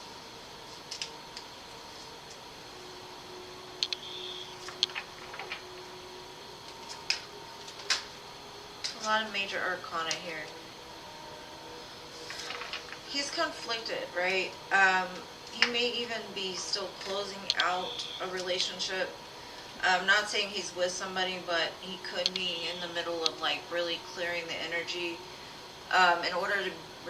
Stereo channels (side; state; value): both; identical; correlation 1.00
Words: A lot of major arcana here. He's conflicted, right? He may even be still closing out a relationship. I'm not saying he's with somebody, but he could be in the middle of like really clearing the energy in order to